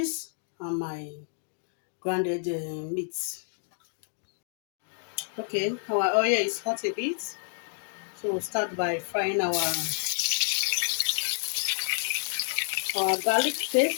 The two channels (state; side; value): silent; right; digital silence